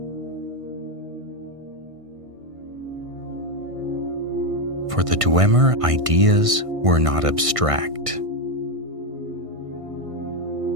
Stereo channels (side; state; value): left; late; 1.5 ms